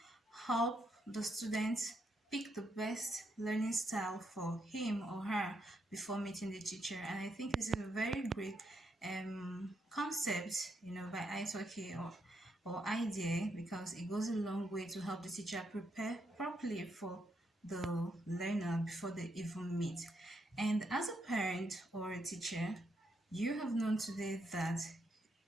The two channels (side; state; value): both; normal; correlation 0.78